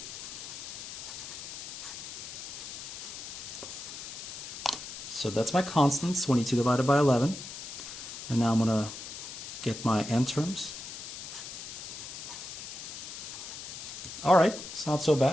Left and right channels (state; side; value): noise; left; hiss, 9 dB below the sound